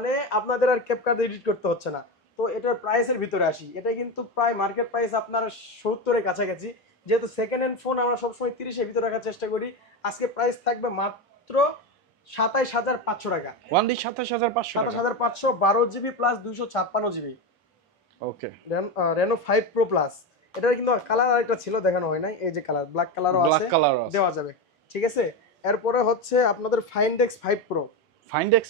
আপনাদের আর ক্যাপকাট এডিট করতে হচ্ছে না। তো এটার প্রাইসের ভিতরে আসি, এটা কিন্তু প্রায় মার্কেট প্রাইস আপনার 70-এর কাছাকাছি। যেহেতু সেকেন্ড হ্যান্ড ফোন আমরা সবসময় 30-এর ভিতরে রাখার চেষ্টা করি, আজকে প্রাইস থাকবে মাত্র 27,500 টাকা। 27,500, 27,500, 12 জিবি প্লাস 256 জিবি, ওকে রেনো 5 প্রো প্লাস। এটার কিন্তু কালার আরেকটা ছিল, দেখানো হয় নাই, এই যে কালার, ব্ল্যাক কালারও আছে, দেওয়া যাবে, ঠিক আছে। এরপরে হচ্ছে আপনাদের Find X 5 pro. Find X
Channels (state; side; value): normal; both; correlation 0.16